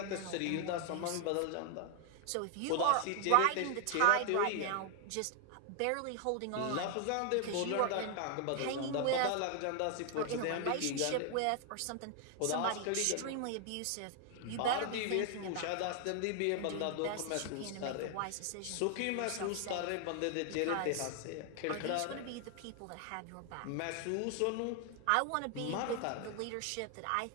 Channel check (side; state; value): both; different; correlation 0.00